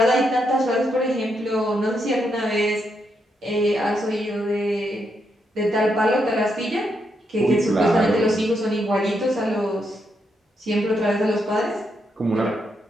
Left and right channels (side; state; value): both; normal; correlation 0.80